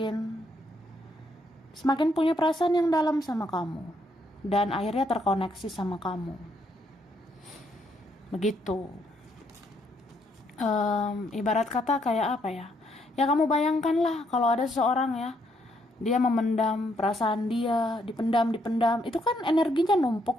punya perasaan yang dalam sama kamu. Dan akhirnya terkoneksi sama kamu. Begitu. Ibarat kata kayak apa ya? Ya kamu bayangkanlah kalau ada seseorang ya, dia memendam perasaan dia, dipendam, itu kan energinya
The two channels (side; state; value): both; normal; correlation 0.73